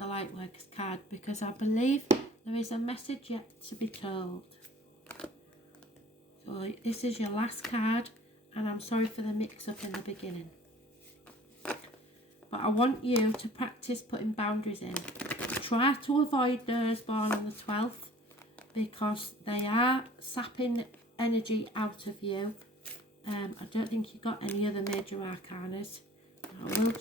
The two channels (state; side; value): normal; both; correlation 0.49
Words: Lightworkers card, because I believe there is a message yet to be told. So this is your last card, and I'm sorry for the mix-up in the beginning. But I want you to practice putting boundaries in. Try to avoid those born on the 12th, because they are sapping energy out of you. I don't think you got any other major arcanas. I will